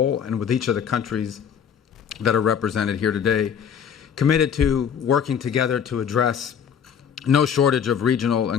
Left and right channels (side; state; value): right; quieter; 7.8 dB